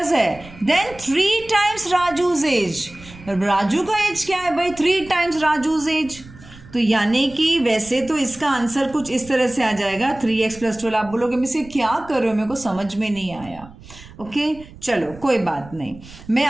है, then 3 times Raju's age. Raju का एज क्या है भाई, 3 times राजूज एज। तो यानी कि वैसे तो इसका आंसर कुछ इस तरह से आ जाएगा 3x + 12। आप बोलोगे मैं इसे क्या कर रहे हो, मेरे को समझ में नहीं आया। ओके चलो कोई बात नहीं, मैं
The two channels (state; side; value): noise; right; rumble, 19 dB below the sound